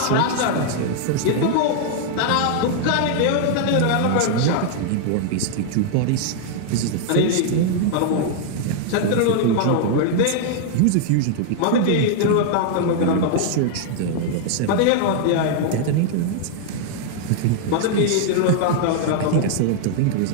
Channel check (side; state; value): both; different; correlation 0.00